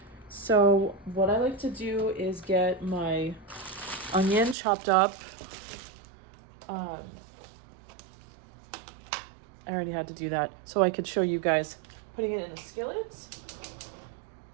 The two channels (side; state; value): left; drops out; at 4.5 s